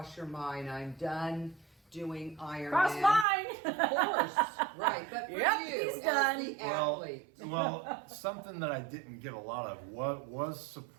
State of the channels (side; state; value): left; drops out; at 3.2 s